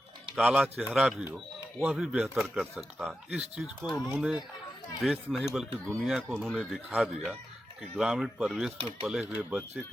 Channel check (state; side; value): normal; both; correlation 0.90